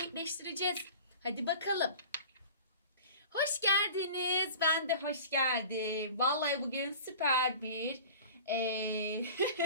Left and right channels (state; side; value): inverted; both; correlation -0.40